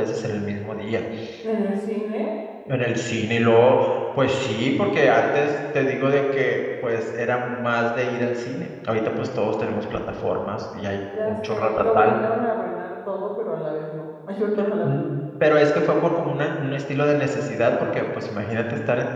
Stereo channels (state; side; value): identical; both; correlation 1.00